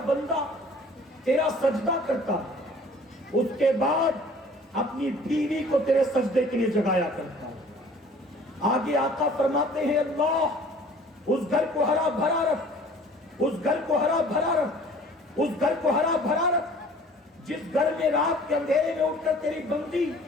بندہ تیرا سجدہ کرتا، اس کے بعد اپنی بیوی کو تیرے سجدے کے لیے جگایا کرتا۔ آگے آقا فرماتے ہیں، اللہ اس گھر کو ہرا بھرا رکھ، اس گھر کو ہرا بھرا رکھ، اس گھر کو ہرا بھرا رکھ، جس گھر میں رات کے اندھیرے میں اٹھ کر تیری بندی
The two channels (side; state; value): both; normal; correlation 0.50